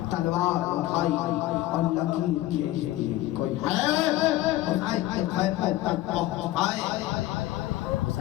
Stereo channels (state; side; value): quieter; right; 15.7 dB